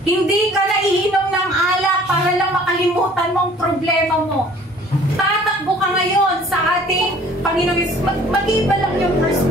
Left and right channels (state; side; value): normal; both; correlation 0.53